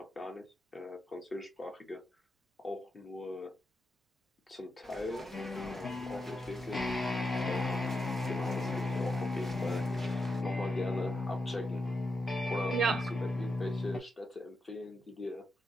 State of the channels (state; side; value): normal; both; correlation 0.85